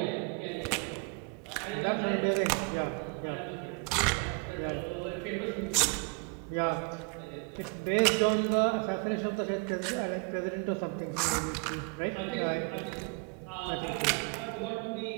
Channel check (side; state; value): left; quieter; 34.2 dB